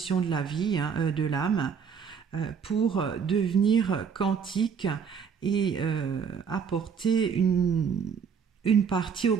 de la vie, de l'âme, pour devenir quantique et apporter une partie au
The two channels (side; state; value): left; quieter; 6.7 dB